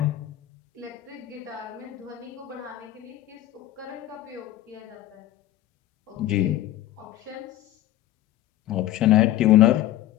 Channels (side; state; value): right; quieter; 13.9 dB